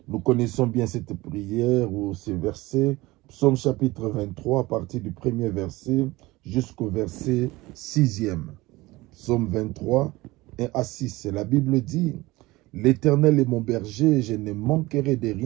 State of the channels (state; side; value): quieter; left; 20.3 dB